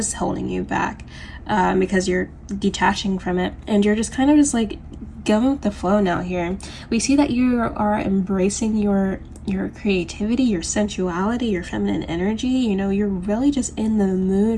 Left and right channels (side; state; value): both; identical; correlation 1.00